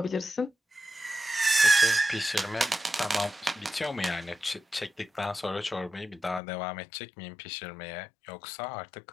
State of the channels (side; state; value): right; drops out; at 6.4 s